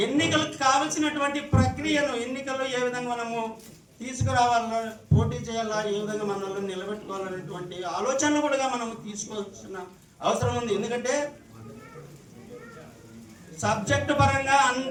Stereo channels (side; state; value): both; identical; correlation 1.00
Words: ఎన్నికలకు కావలసినటువంటి ప్రక్రియను, ఎన్నికల్లో ఏ విధంగా మనము తీసుకురావాలా, పోటీ చేయాలా, ఏ విధంగా మనల్ని నిలబెట్టుకోవాలనేటువంటి ఆలోచనలు కూడా మనము తీసుకోవాల్సిన అవసరం ఉంది. ఎందుకంటే సబ్జెక్టు పరంగా